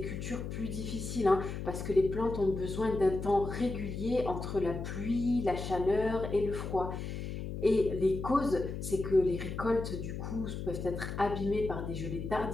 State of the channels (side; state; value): left; noise; hum, 6 dB below the sound